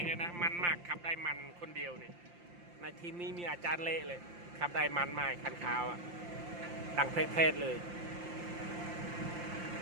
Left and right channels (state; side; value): late; left; 5.7 ms